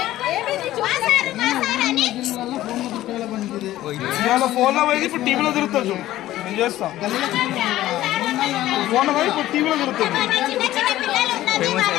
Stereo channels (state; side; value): quieter; right; 14.7 dB